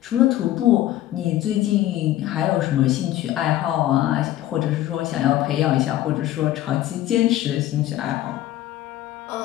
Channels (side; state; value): right; quieter; 14.0 dB